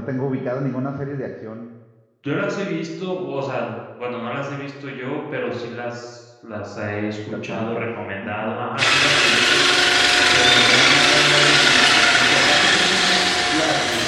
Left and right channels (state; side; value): identical; both; correlation 1.00